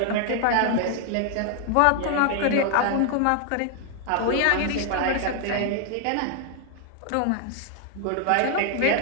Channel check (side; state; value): both; different; correlation 0.00